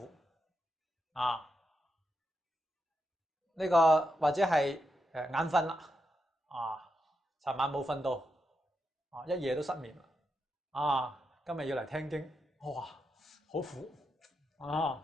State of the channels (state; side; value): normal; both; correlation 0.85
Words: 啊。呢個或者係眼瞓啦啊，尋晚冇瞓到啊，一夜都失眠啦啊，今日要嚟聽經，哇，好苦啊！